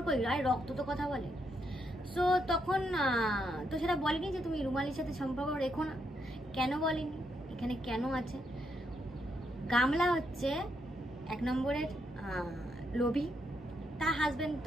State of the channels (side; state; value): both; normal; correlation 0.78